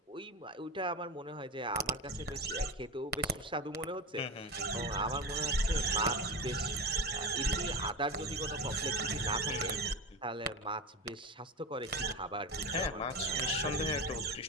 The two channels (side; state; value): both; normal; correlation 0.22